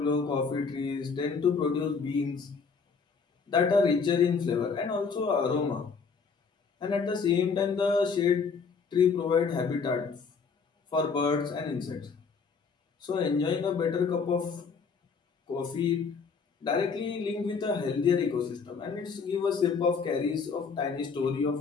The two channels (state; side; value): quieter; right; 5.4 dB